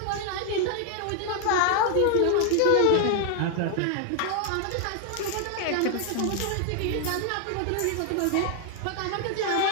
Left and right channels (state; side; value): different; both; correlation 0.00